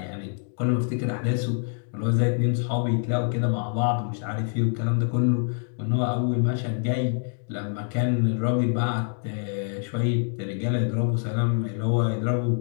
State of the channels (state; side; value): silent; right; 61 dB below the other